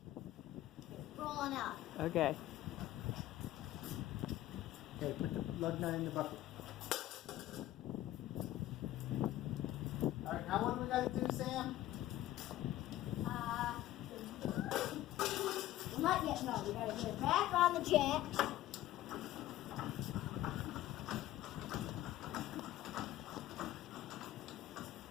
Rolling out. Okay. Okay, put the lug nut in the bucket. Alright, now what do we gotta do, Sam? Not yet, no. We gotta get it back on the jacks.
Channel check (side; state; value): right; quieter; 14.4 dB